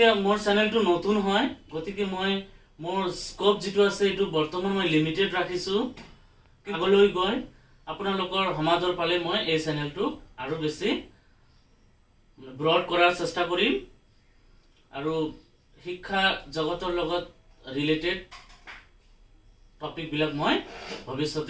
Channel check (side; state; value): both; identical; correlation 1.00